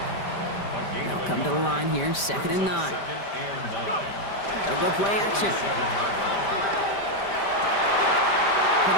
They'll come to the line here, 2nd and 9. They'll go play action.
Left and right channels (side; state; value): right; late; 5.1 ms